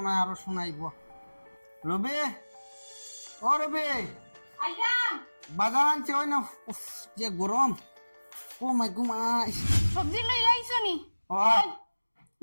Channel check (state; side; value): inverted; both; correlation -1.00